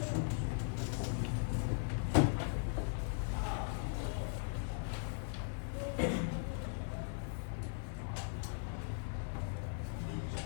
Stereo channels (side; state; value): right; silent; 52 dB below the other